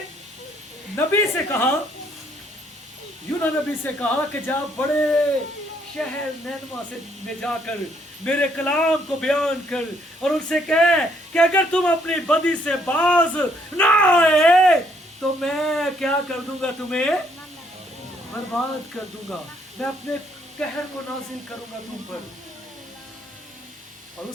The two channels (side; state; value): both; normal; correlation 0.69